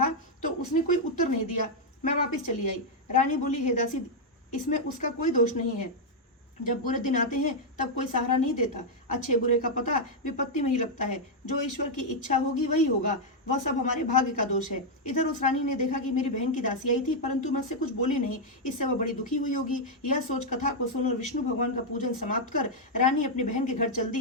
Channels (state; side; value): normal; both; correlation -0.02